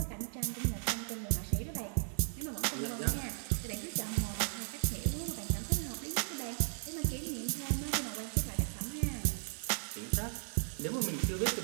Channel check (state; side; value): silent; left; digital silence